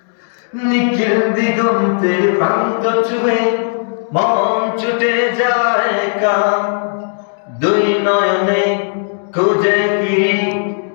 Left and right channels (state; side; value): silent; right; digital silence